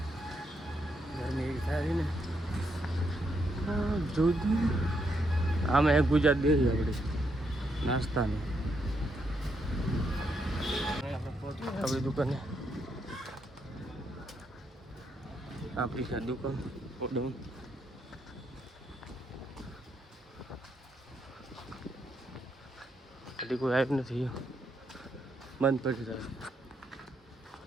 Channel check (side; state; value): both; normal; correlation 0.78